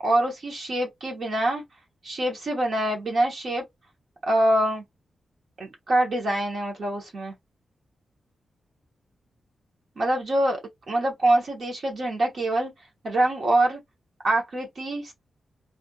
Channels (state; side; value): normal; both; correlation 0.90